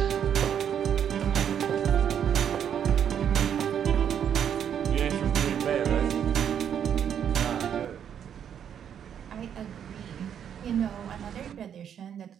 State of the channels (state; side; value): quieter; left; 8.7 dB